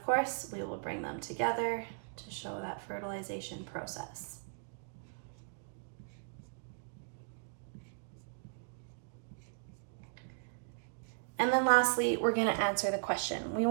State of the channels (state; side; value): silent; left; digital silence